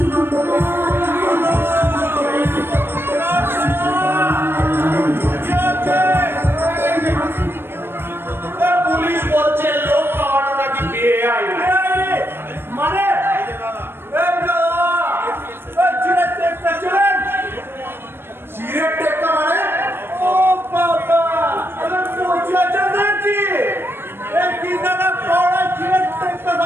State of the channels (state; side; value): late; left; 0.11 ms